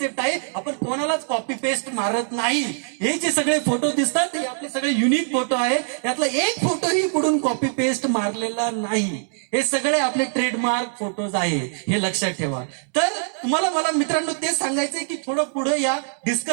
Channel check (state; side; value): silent; left; digital silence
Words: आहे, आपण कोणालाच कॉपी पेस्ट मारत नाही. हे जे सगळे फोटो दिसतात हे आपले सगळे युनिक फोटो आहे. यातला एक फोटोही कुठून कॉपी पेस्ट मारलेला नाही. हे सगळे आपले ट्रेडमार्क फोटोज आहे, हे लक्षात ठेवा. तर तुम्हाला मला मित्रांनो तेच सांगायचंय की थोडं पुढे या,